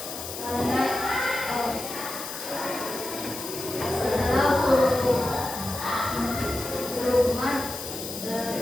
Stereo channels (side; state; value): left; noise; hiss, 8 dB below the sound